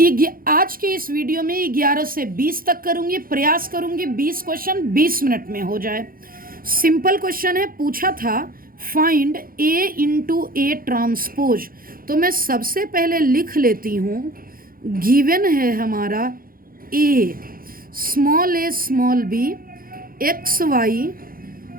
आज के इस वीडियो में 11 से 20 तक करूंगी, प्रयास करूंगी 20 क्वेश्चन 20 मिनट में हो जाए। सिंपल क्वेश्चन है, पूछा था find A into A transpose. तो मैं सबसे पहले लिख लेती हूँ, गिवन है हमारा a small b x Y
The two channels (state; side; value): late; left; 0.42 ms